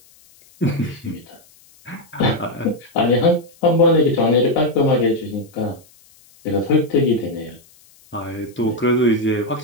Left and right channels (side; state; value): left; noise; hiss, 29 dB below the sound